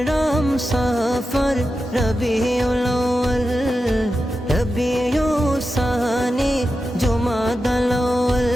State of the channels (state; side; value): normal; both; correlation 0.91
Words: সফর রবিউল আউয়াল রবিউস সানি জুমাদাল আউয়াল